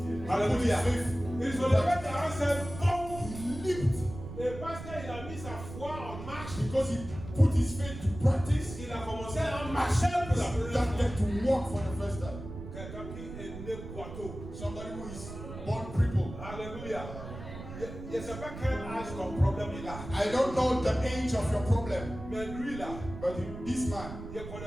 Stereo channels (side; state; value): right; noise; rumble, 11 dB below the sound